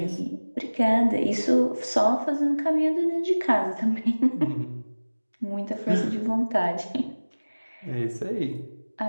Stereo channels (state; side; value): inverted; both; correlation -1.00